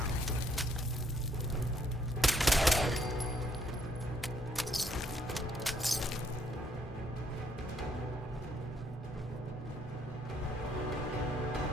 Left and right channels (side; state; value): both; normal; correlation 0.69